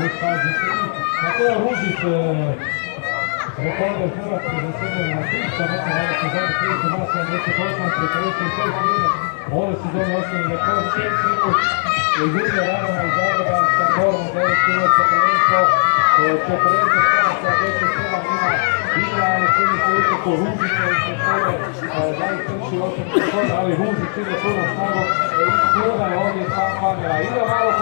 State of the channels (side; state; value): right; silent; digital silence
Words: fazi 3. Mateo Ružić, rekorder Hrvatske za srednje na 300 metara, ove sezone 38, 46 minut. Ove sezone osnovni rekord 6 minut. Jurija Ravana iz Zagreba sa Gorom 9 minuta prvenstvo, 40 stranaca, 10-7 ima ali čini se utoku Ružića i se svoje najkrši osnovni rekord, ali Ružić ide puno snagom i skruga je ovdje sam kamera. Ide malo